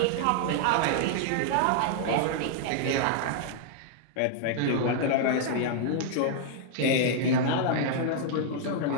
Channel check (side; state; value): both; different; correlation -0.01